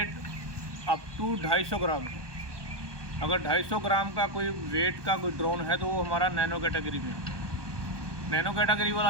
अप टू 250 ग्राम है। अगर 250 ग्राम का कोई वेट का कोई ड्रोन है तो वो हमारा नैनो कैटेगरी में है। नैनो कैटेगरी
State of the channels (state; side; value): late; left; 1.2 ms